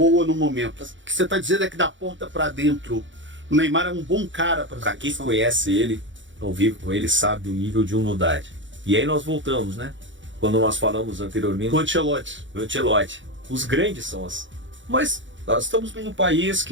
no momento. O que você está dizendo é que da porta para dentro, o Neymar é um bom cara para quem conhece ele, convive com ele, sabe do nível de humildade. E aí nós voltamos, né? Quando nós falamos anteriormente do Ancelotti. Os grandes são assim. Mas nós estamos num país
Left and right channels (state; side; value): late; left; 0.55 ms